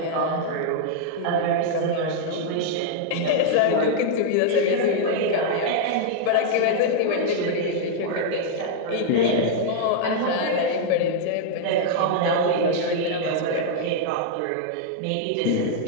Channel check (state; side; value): different; both; correlation -0.01